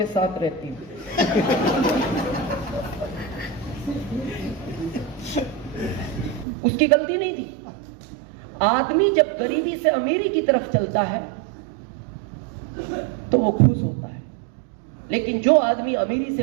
साथ रहती हूं। उसकी गलती नहीं थी। आदमी जब गरीबी से अमीरी की तरफ चलता है तो वो खुश होता है, लेकिन जो आदमी अमीरी से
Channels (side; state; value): left; drops out; at 6.5 s